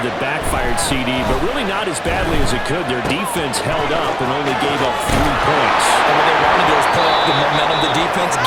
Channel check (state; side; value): identical; both; correlation 1.00